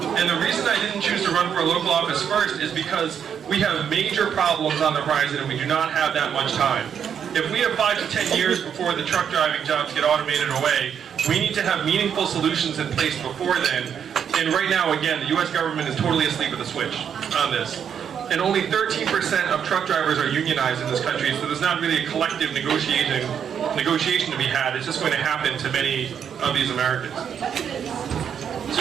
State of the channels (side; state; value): left; quieter; 8.0 dB